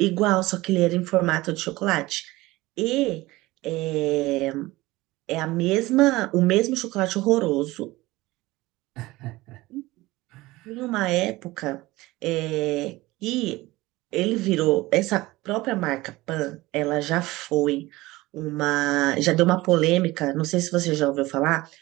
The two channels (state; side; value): quieter; left; 19.5 dB